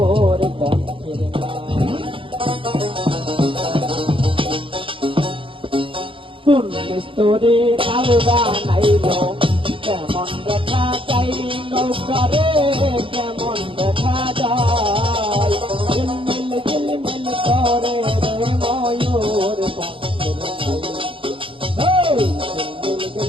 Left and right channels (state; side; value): late; left; 0.25 ms